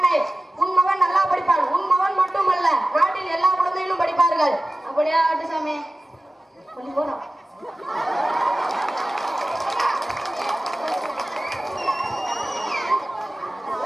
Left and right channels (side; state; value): both; normal; correlation 0.97